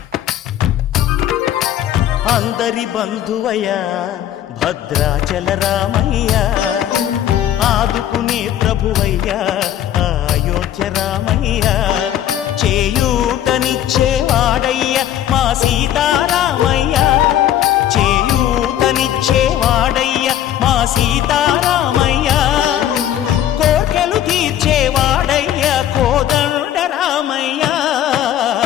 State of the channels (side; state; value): right; quieter; 11.3 dB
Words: అందరి బంధువయ్య భద్రాచల రామయ్య, ఆదుకునే ప్రభువయ్య అయోధ్య రామయ్య. చేయూతనిచ్చేవాడయ్య మా సీతారామయ్య, చేయూతనిచ్చేవాడయ్య మా సీతారామయ్య. కోర్కెలు తీర్చేవాడయ్య కోదండ రామయ్య.